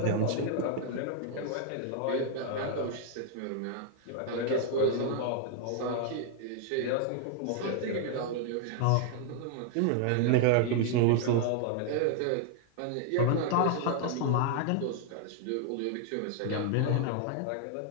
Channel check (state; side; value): different; both; correlation 0.00